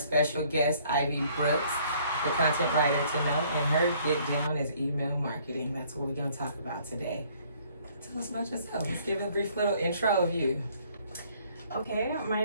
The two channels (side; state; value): both; inverted; correlation -0.60